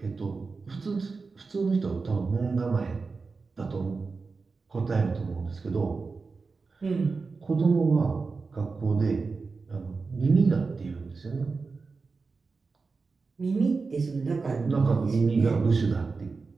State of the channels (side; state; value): left; quieter; 4.3 dB